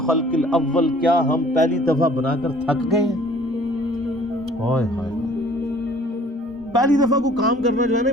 الاول، کیا ہم پہلی دفعہ بنا کر تھک گئے ہیں؟ ہائے ہائے، پہلی دفعہ کو کام کرنا جو ہے نا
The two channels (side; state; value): both; normal; correlation 0.54